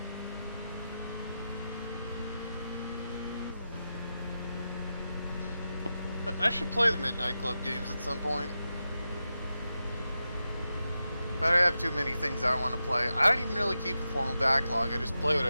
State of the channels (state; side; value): inverted; both; correlation -0.90